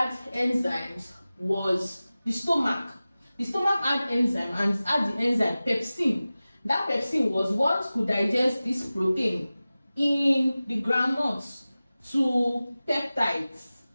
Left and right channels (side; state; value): both; inverted; correlation -0.97